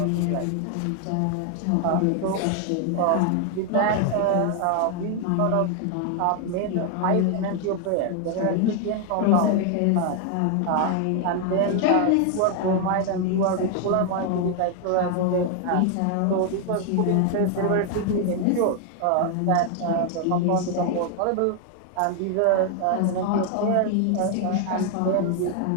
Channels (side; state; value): both; different; correlation 0.00